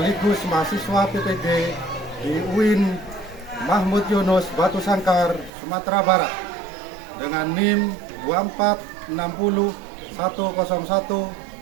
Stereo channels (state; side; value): drops out; left; at 5.5 s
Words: mahasiswa PPG di UIN Mahmud Yunus Batu Sangkar, Sumatera Barat, dengan NIM